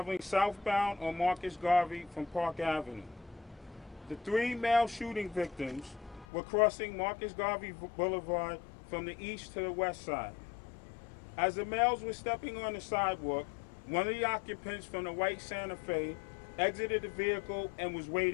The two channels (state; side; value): drops out; right; at 6.2 s